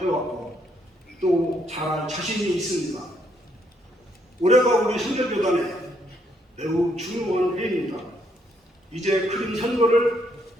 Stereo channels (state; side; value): normal; both; correlation 0.73